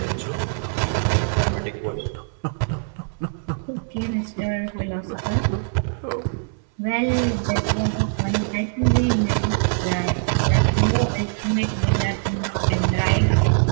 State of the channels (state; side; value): silent; left; digital silence